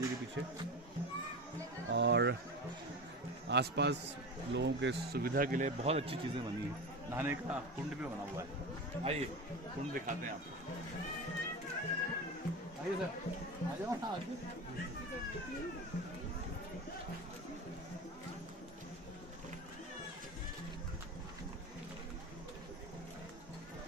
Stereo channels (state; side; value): normal; both; correlation 0.26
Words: के पीछे, और आसपास लोगों के सुविधा के लिए बहुत अच्छी चीज़ें बनी हैं। नहाने का कुंड भी बना हुआ है, आइए कुंड दिखाते हैं आपको। आइए सर, आ जाओ ना आगे।